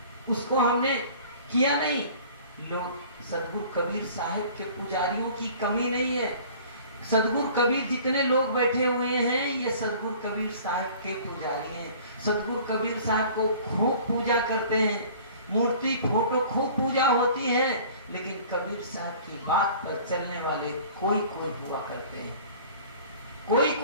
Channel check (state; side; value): inverted; both; correlation -0.47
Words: उसको हमने किया नहीं। लोग सदगुरु कबीर साहब के पुजारियों की कमी नहीं है। सदगुरु कबीर जितने लोग बैठे हुए हैं ये सदगुरु कबीर साहब के पुजारी हैं। सदगुरु कबीर साहब को खूब पूजा करते हैं, मूर्ति फोटो खूब पूजा होती है, लेकिन कबीर साहब की बात पर चलने वाले कोई कोई हुआ करते हैं। कोई